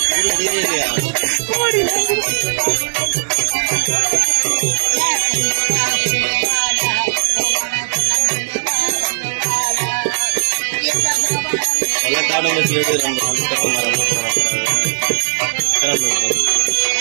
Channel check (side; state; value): left; silent; digital silence